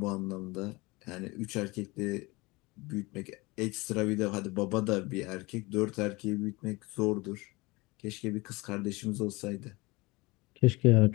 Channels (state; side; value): quieter; right; 23.7 dB